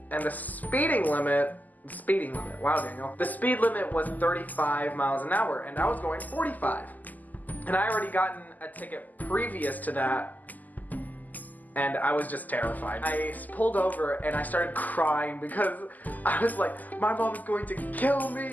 And the speed limit, wow Daniel, the speed limit was 35 miles an hour and I was going 45. And I already gotten a ticket previous to that and I was just terrified. I pulled over and I started crying because I was like, my mom is going to kill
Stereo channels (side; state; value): right; late; 0.082 ms